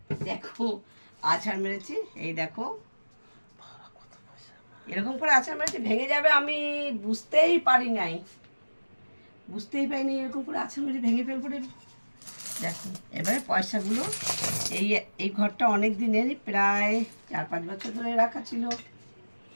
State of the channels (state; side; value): inverted; both; correlation -1.00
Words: দেখো আছাড় মেরেছি, এই দেখো এরকম করে আছাড় মেরেছি, ভেঙে যাবে আমি বুঝতেই পারিনি, এরকম করে আছাড় মেরে ভেঙে ফেলবো রে। দেখো এবারে পয়সাগুলো, এই এই ঘরটা অনেক দিনেরই, প্রায় 4-5 বছর ধরে রাখা ছিল।